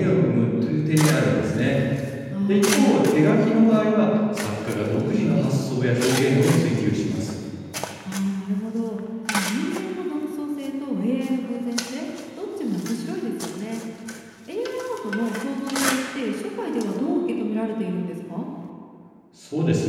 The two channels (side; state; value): both; identical; correlation 1.00